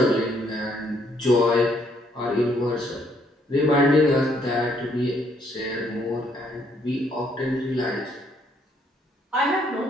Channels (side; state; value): both; normal; correlation 0.69